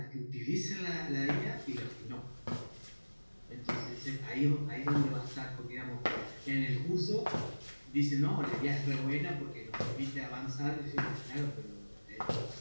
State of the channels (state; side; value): inverted; both; correlation -1.00